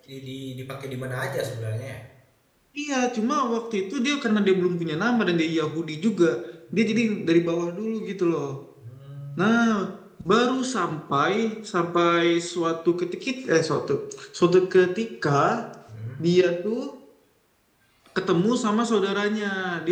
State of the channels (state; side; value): identical; both; correlation 1.00